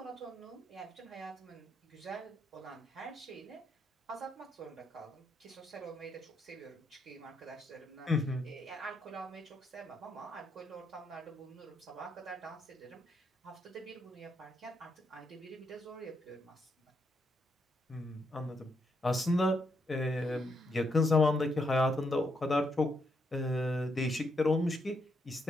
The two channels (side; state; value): both; normal; correlation 0.79